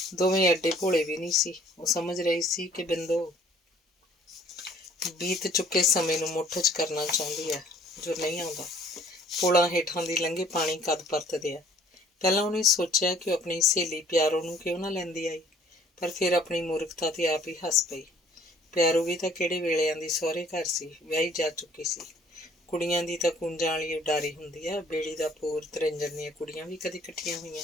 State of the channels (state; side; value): normal; both; correlation 0.58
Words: ਦੋਵੇਂ ਐਡੇ ਭੋਲੇ ਵੀ ਨਹੀਂ ਸੀ। ਉਹ ਸਮਝ ਰਹੀ ਸੀ ਕਿ ਬਿੰਦੋ ਬੀਤ ਚੁੱਕੇ ਸਮੇਂ ਨੂੰ ਮੁੱਠ 'ਚ ਕਰਨਾ ਚਾਹੁੰਦੀ ਹੈ ਜੋ ਨਹੀਂ ਆਉਂਦਾ। ਪੁਲਾਂ ਹੇਠਾਂ ਦੀ ਲੰਘੇ ਪਾਣੀ ਕਦ ਪਰਤਦੇ ਆ। ਪਹਿਲਾਂ ਉਹਨੇ ਸੋਚਿਆ ਕਿ ਉਹ ਆਪਣੀ ਸਹੇਲੀ ਪਿਆਰੋ ਨੂੰ ਕਿਉਂ ਨਾ ਲੈਂਦੀ ਆਈ, ਪਰ ਫਿਰ ਆਪਣੀ ਮੂਰਖਤਾ ਤੇ ਆਪ ਹੀ ਹੱਸ ਪਈ। ਪਿਆਰੋ ਵੀ ਤਾਂ ਕਿਹੜੇ ਵੇਲਿਆਂ ਦੀ ਸਹੁਰੇ ਘਰ ਸੀ, ਵਿਆਹੀ ਜਾ ਚੁੱਕੀ ਸੀ। ਕੁੜੀਆਂ ਦੀ ਤਾਂ ਕੂੰਜਾਂ ਵਾਲੀ ਉਡਾਰੀ ਹੁੰਦੀ ਆ। ਬੇੜੀ ਦਾ ਪੂਰ ਤਰਿੰਜਣ ਦੀਆਂ ਕੁੜੀਆਂ ਵੀ ਕਦੇ ਇਕੱਠੀਆਂ